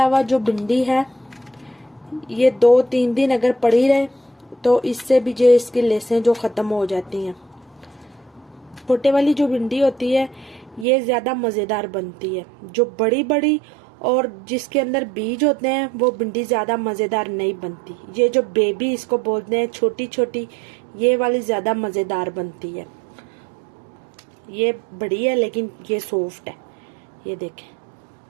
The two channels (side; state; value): left; drops out; at 10.9 s